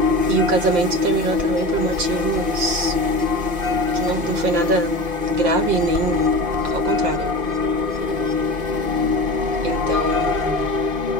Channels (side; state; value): left; late; 5.7 ms